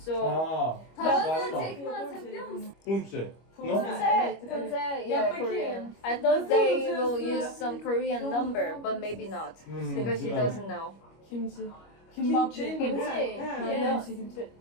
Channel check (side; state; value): right; late; 25 ms